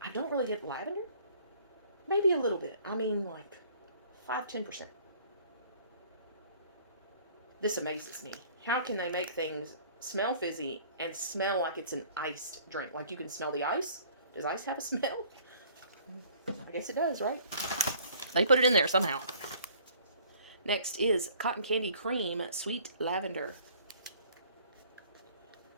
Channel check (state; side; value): inverted; both; correlation -0.55